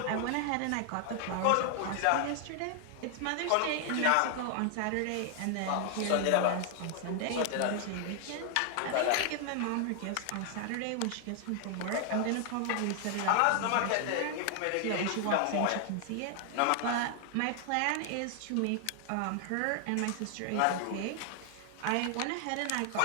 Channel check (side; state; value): both; different; correlation 0.00